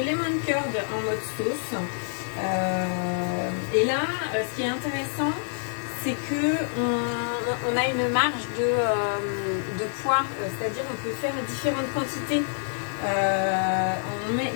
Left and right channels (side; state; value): right; silent; 60 dB below the other